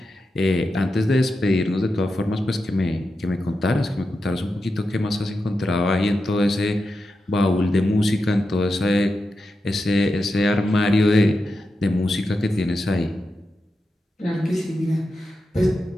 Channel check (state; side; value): normal; both; correlation 0.89